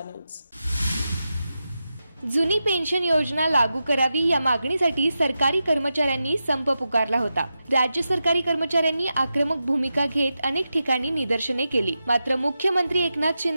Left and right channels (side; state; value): both; inverted; correlation -0.90